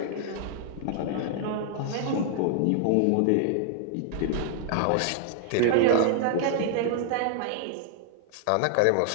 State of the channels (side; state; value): both; different; correlation 0.00